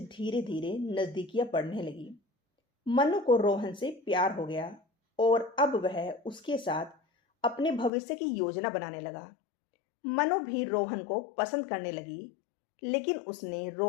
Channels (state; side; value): drops out; right; at 7.9 s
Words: धीरे नजदीकियां बढ़ने लगी। मनु को रोहन से प्यार हो गया और अब वह उसके साथ अपने भविष्य की योजना बनाने लगा। मनु भी रोहन को पसंद करने लगी, लेकिन उसने